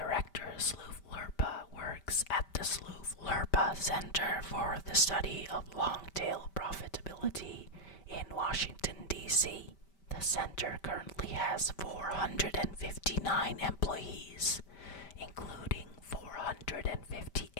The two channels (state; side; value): late; right; 5.1 ms